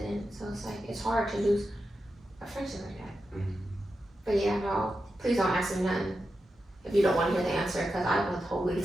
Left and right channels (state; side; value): normal; both; correlation 0.89